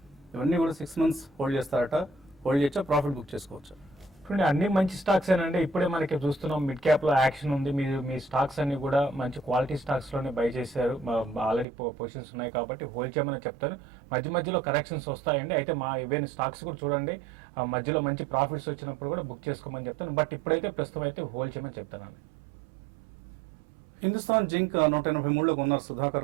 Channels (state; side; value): drops out; left; at 11.7 s